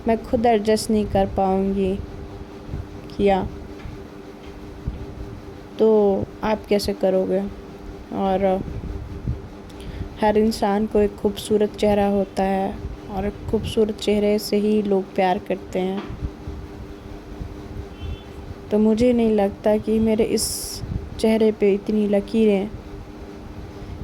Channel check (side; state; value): both; identical; correlation 1.00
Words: میں خود ایڈجسٹ نہیں کر پاؤں گی. کیا تو آپ کیسے کرو گے؟ اور ہر انسان کو ایک خوبصورت چہرہ ہوتا ہے اور خوبصورت چہرے سے ہی لوگ پیار کرتے ہیں. تو مجھے نہیں لگتا کہ میرے اس چہرے پہ اتنی لکیریں